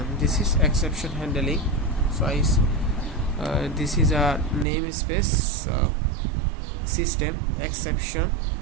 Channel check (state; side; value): drops out; left; at 4.7 s